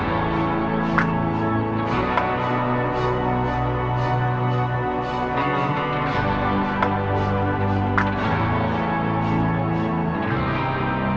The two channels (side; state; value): both; identical; correlation 1.00